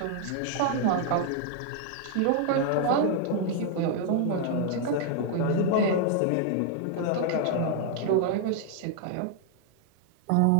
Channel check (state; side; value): different; both; correlation 0.00